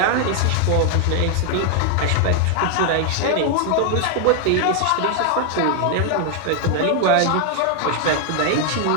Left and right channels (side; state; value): both; different; correlation 0.00